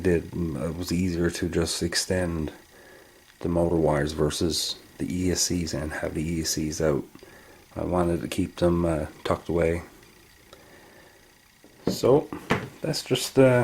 it was easier to just extend the motor wires versus the ESCs and have the ESCs out. I wanted to keep them tucked away. So that's just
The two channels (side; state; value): both; identical; correlation 1.00